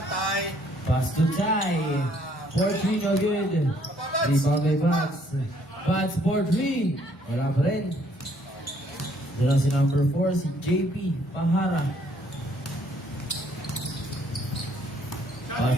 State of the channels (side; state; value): both; normal; correlation 0.65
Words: tie. Pass to Ty. 4-3, no good. Rebound by Buds. Buds 4-3. Wala pa rin. Doon lang si number 4, si JP Pahara.